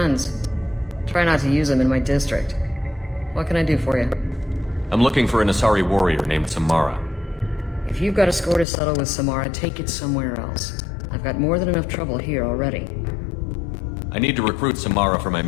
Try not to use them in my district. What can I do for you? I'm looking for an Asari warrior named Samara. If you've got a score to settle with Samara, take it somewhere else. I've got more than enough trouble here already. I need to recruit Samara for my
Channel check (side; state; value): right; drops out; at 8.7 s